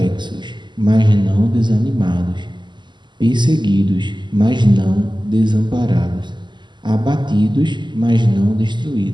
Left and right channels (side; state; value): left; late; 0.22 ms